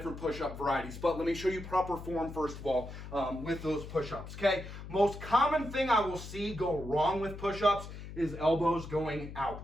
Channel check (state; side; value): noise; left; hum, 11 dB below the sound